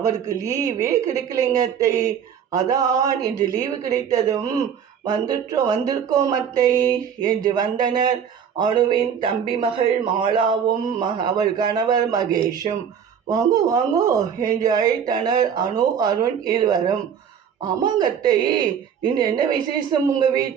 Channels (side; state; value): left; quieter; 7.9 dB